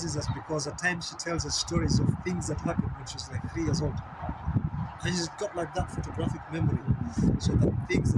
us because at times she tells us stories of things that happened when she was like 3 years old. And she's got like that photographic memory. So the things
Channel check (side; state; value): both; identical; correlation 1.00